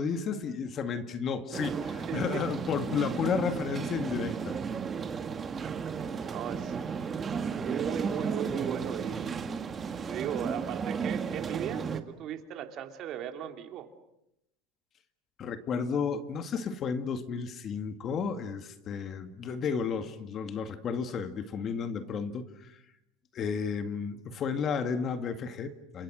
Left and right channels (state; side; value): normal; both; correlation 0.60